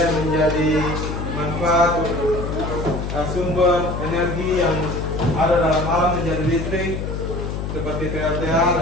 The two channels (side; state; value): left; noise; hum, 4 dB below the sound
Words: menjadi manfaat sumber energi yang ada dalam alam menjadi listrik seperti PLTA